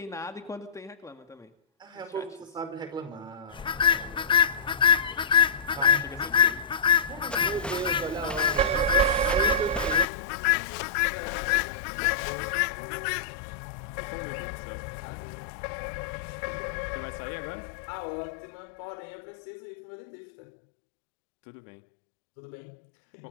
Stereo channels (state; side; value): drops out; right; at 10.1 s